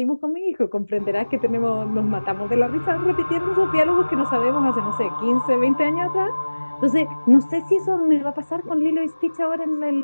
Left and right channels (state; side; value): inverted; both; correlation -1.00